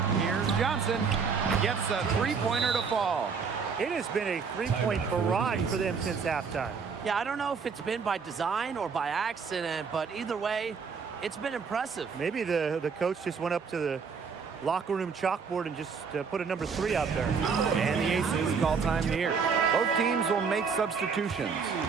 Here's Johnson. Gets a three-pointer to fall. It has been a three-point barrage for them since halftime. Yeah, I don't know if it's been by design or by accident, but either way, it's been impressive. Maybe the coach just went up to the locker room chalkboard and just put a number 3 out there. And the Aces call time here. Both teams will make substitutions.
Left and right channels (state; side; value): quieter; left; 5.7 dB